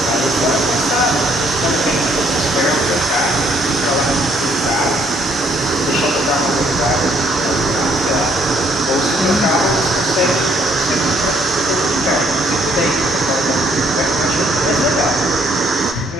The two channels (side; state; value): both; normal; correlation 0.66